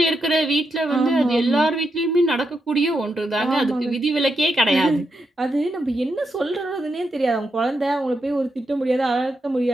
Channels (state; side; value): normal; both; correlation 0.83